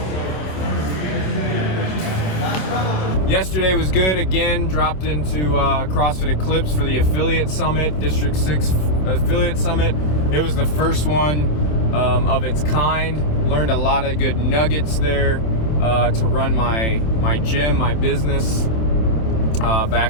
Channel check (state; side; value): late; right; 27 ms